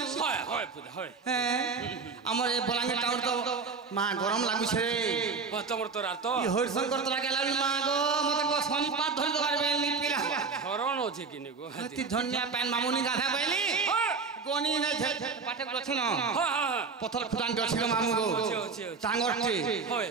होय होय पुदा होय हमर ए बलांगे टाउन तो मां गरम लागु छे तमर तोरा तो ई हरिशंकर तोरा गेला मां गो मते को संपात धरि दबार बेली पिला हरण होछे किने गो अति धन्य पैन मामुनी गाधा बेली गोनी ने पाठक रथन हां हां पथर खुदान दछिलो मामू गो टांगरटे होय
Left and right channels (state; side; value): quieter; left; 4.9 dB